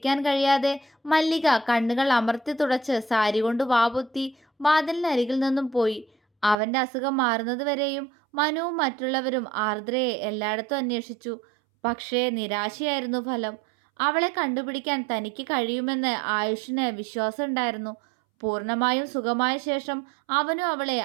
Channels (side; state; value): left; drops out; at 6.6 s